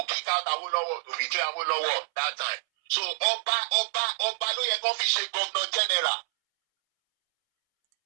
kick out Awolowo, to betray Awolowo that time. So Oba ló yẹ kó fi ṣe governor general.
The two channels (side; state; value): left; silent; 60 dB below the other